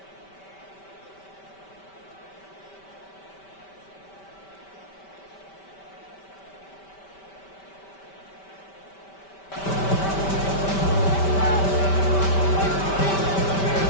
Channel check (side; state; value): right; late; 5.1 ms